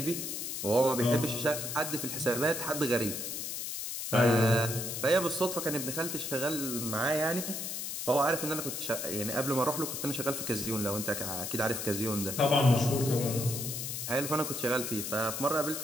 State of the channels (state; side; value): noise; left; hiss, 4 dB below the sound